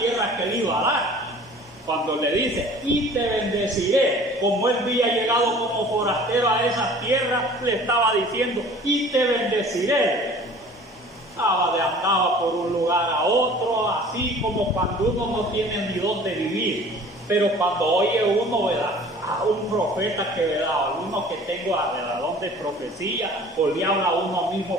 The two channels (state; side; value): normal; both; correlation 0.47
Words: que él iba a dar. Cuando le dice y te bendeciré, como él había llegado como forastero a esas tierras, le estaba diciendo y te bendeciré. Andaba por un lugar a otro, así como cuando uno no tiene ni dónde vivir. Pero cuando oye uno, ¿verdad?, a un profeta que, ¿verdad?, uno que tengo a donde profecía, o le habla a uno mismo